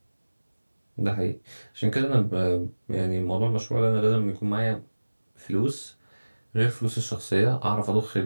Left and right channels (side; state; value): both; inverted; correlation -1.00